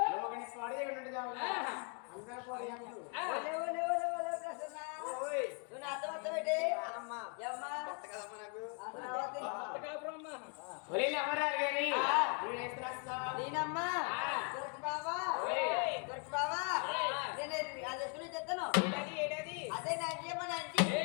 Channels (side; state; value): right; quieter; 37.7 dB